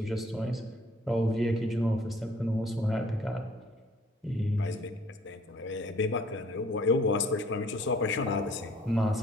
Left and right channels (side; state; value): both; normal; correlation 0.57